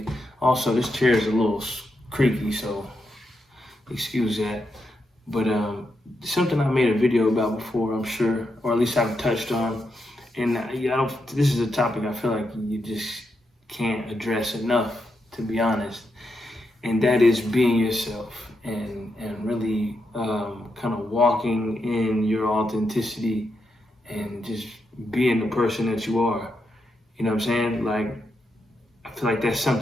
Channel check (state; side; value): normal; both; correlation 0.83